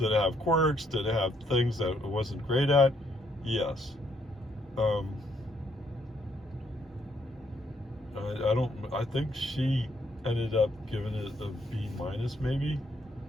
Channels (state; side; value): normal; both; correlation 0.72